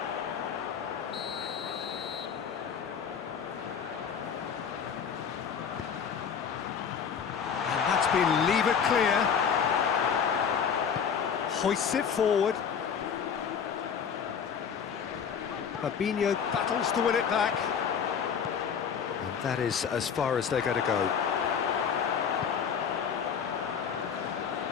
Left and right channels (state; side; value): quieter; right; 7.1 dB